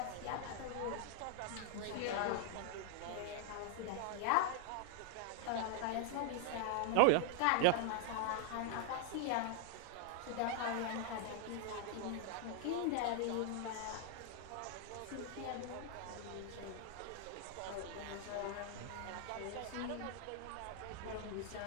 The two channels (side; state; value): both; different; correlation 0.00